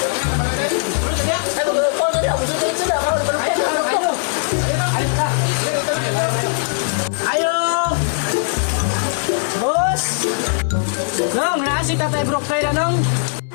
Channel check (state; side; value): silent; right; digital silence